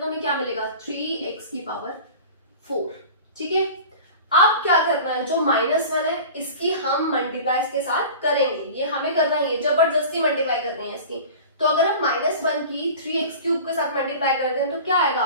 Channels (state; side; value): inverted; both; correlation -0.37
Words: तो हमें क्या मिलेगा 3x की पावर 4। ठीक है, अब क्या करना है, जो -1 है इसकी हम मल्टीप्लाई इसके साथ करेंगे, ये हमें करना ही है, जबरदस्ती मल्टीप्लाई करनी है इसकी। तो अगर हम -1 की 3x³ के साथ मल्टीप्लाई करते हैं तो क्या आएगा